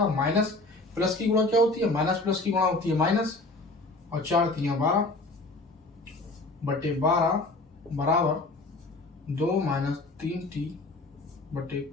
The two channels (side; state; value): right; quieter; 3.1 dB